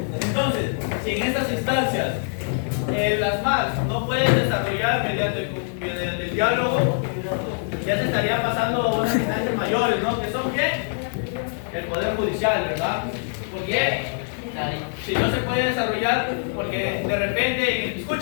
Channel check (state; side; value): silent; right; digital silence